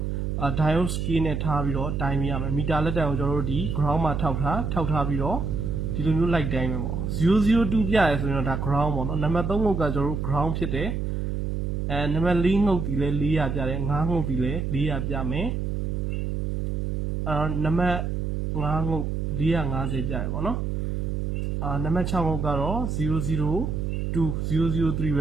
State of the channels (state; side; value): noise; right; hum, 1 dB below the sound